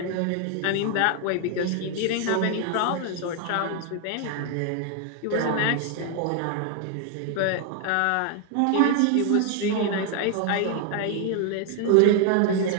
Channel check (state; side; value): different; both; correlation 0.00